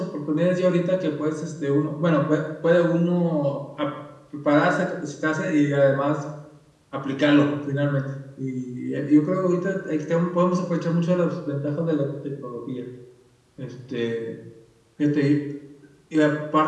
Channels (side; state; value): both; identical; correlation 1.00